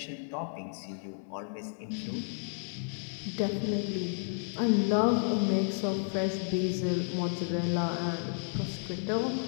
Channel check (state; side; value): silent; right; 56 dB below the other